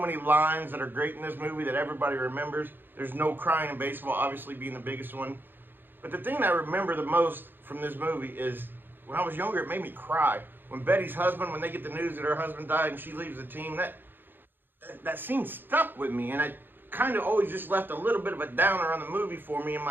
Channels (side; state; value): left; late; 0.096 ms